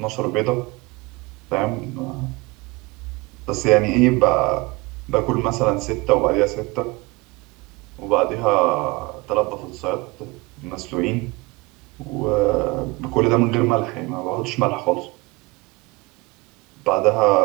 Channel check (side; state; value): left; quieter; 23.4 dB